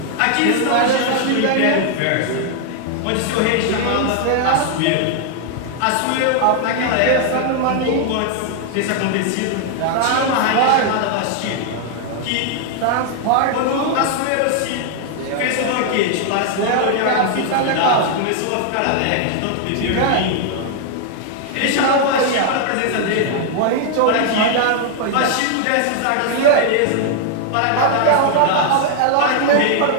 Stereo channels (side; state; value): both; different; correlation 0.00